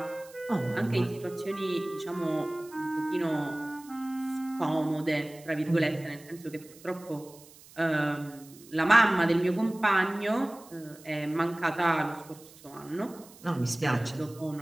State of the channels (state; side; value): noise; right; hiss, 22 dB below the sound